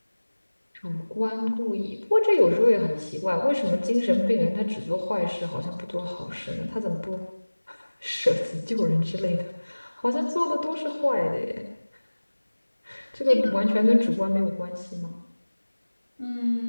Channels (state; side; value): inverted; both; correlation -1.00